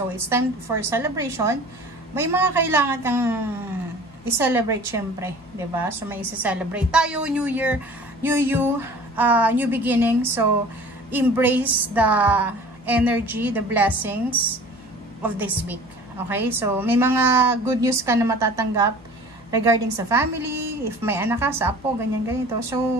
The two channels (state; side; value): noise; left; hum, 27 dB below the sound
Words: it's time for celebration. May mga kailangan kang i-celebrate syempre, 'di ba? So may i-celebrate tayo, New Year, new you, new beginning. So embrace the energy, the blessings of this week. Okay? So may mga good news ka na matatanggap regarding sa family, if may anak ka, sa apo, ganyan ganito.